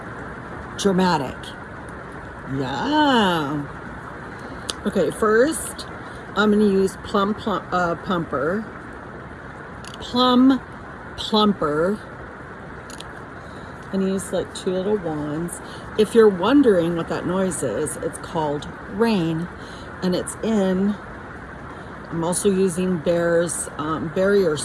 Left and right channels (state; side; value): identical; both; correlation 1.00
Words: dramatic. Yeah. Okay, first I'm gonna use Plum Plumper. And use like 2 little wands. If you're wondering what that noise is, it's called rain, and it's in. I'm also using Bear's barrier